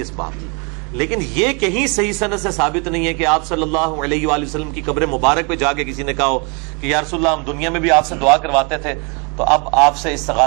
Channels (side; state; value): left; quieter; 33.0 dB